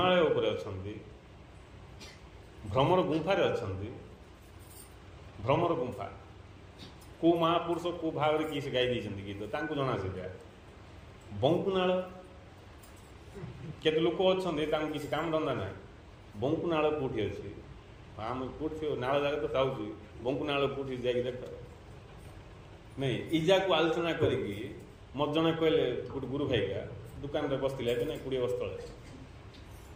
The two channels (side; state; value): both; identical; correlation 1.00